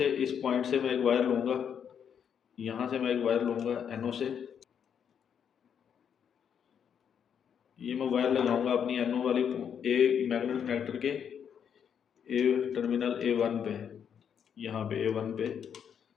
इस पॉइंट से मैं एक वायर लूँगा, यहाँ से मैं एक वायर लूँगा एनओ से, ये मैं वायर लगाऊंगा अपनी एनओ वाली ए मैग्नेट कनेक्टर के ए टर्मिनल A1 पे, यहाँ पे A1 पे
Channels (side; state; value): right; quieter; 8.0 dB